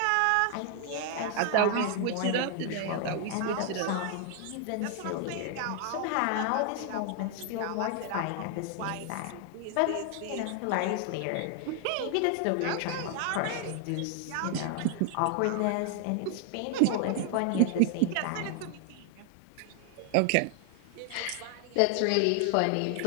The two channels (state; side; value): different; both; correlation 0.00